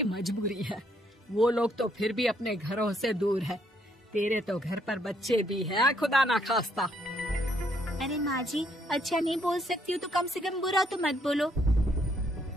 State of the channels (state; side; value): normal; both; correlation 0.71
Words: मजबूरी है, वो लोग तो फिर भी अपने घरों से दूर है। तेरे तो घर पर बच्चे भी हैं, खुदा ना खास्ता। अरे माँ जी अच्छा नहीं बोल सकती हो तो कम से कम बुरा तो मत बोलो।